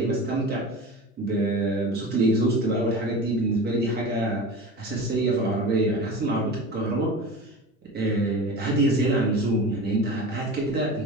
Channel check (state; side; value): normal; both; correlation 0.32